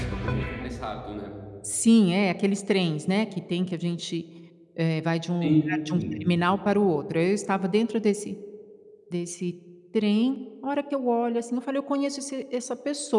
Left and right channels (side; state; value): both; identical; correlation 1.00